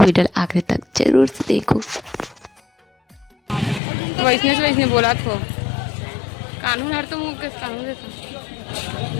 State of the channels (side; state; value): right; drops out; at 3.8 s